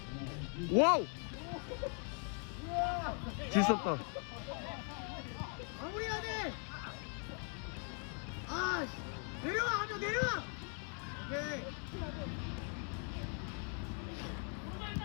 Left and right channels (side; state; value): right; quieter; 39.7 dB